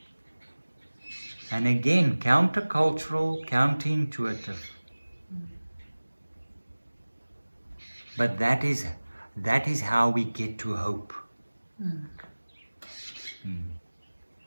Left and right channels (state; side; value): inverted; both; correlation -1.00